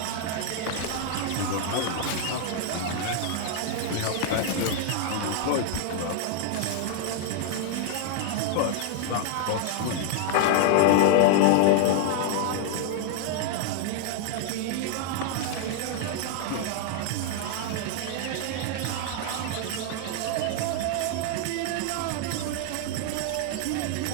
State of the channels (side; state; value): both; different; correlation 0.00